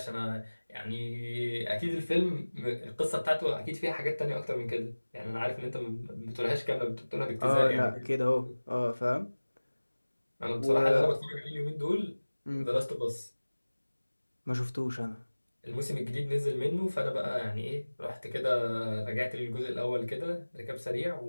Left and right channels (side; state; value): both; inverted; correlation -1.00